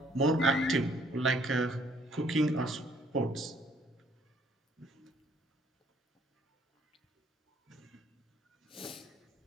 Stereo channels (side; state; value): both; normal; correlation 0.63